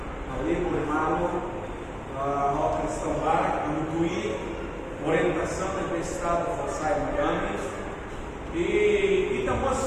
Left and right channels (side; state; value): both; identical; correlation 1.00